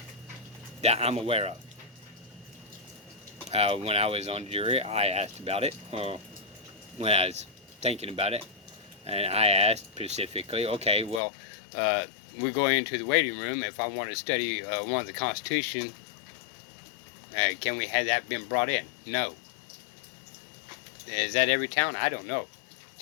That I'm aware of. When I was on jury, I asked about it. Well, when I was thinking about it, and I asked specifically, okay, well, we go into the waiting room. If I want to study one of the Constitution, can we have that been brought in? No. Is that every town? I don't know.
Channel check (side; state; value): right; drops out; at 11.2 s